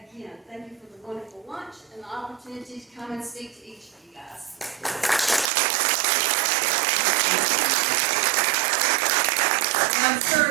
thank you for the wonderful lunch and the opportunity to come and speak to each of you guys. I'm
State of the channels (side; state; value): left; drops out; at 5.5 s